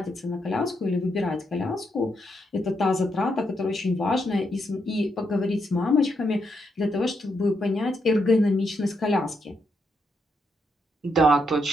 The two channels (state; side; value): normal; both; correlation 0.80